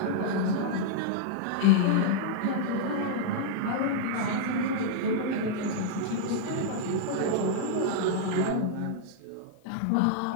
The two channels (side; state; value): both; different; correlation -0.01